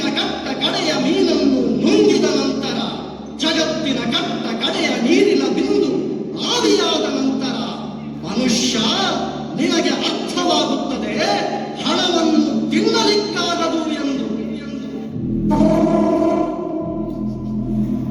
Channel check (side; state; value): both; identical; correlation 1.00